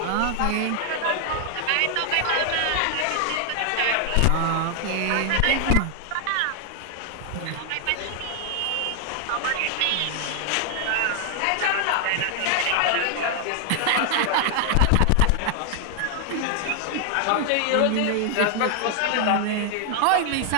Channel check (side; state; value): both; different; correlation 0.00